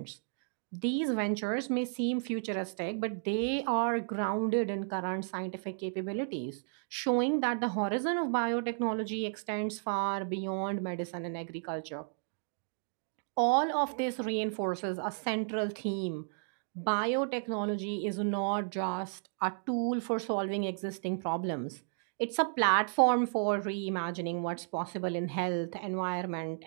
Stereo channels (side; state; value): left; silent; digital silence